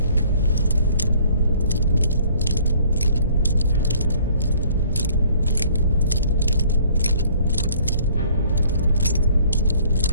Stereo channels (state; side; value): inverted; both; correlation -0.57